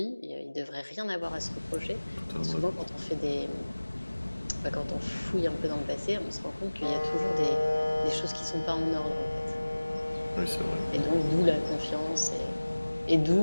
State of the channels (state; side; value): inverted; both; correlation -1.00